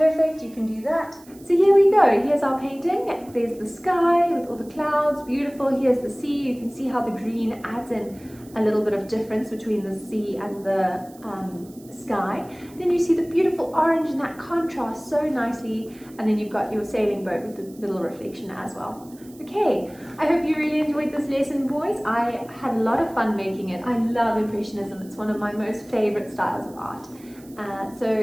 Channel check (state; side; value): noise; right; hiss, 25 dB below the sound